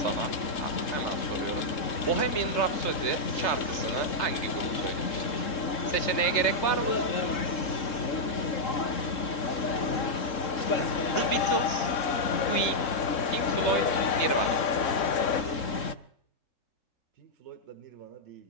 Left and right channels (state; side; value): late; right; 3.7 ms